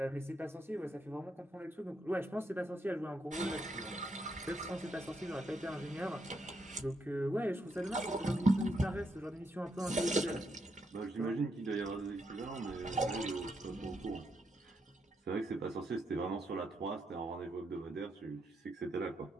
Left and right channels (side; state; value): both; normal; correlation 0.79